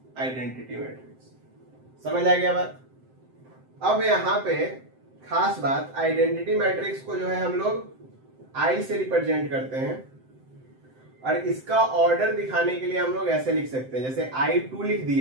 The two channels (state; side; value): late; left; 7.7 ms